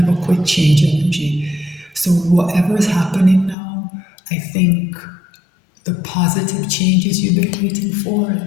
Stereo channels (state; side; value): drops out; right; at 3.6 s